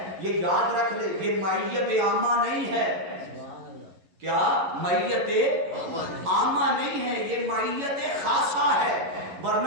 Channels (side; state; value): left; late; 11 ms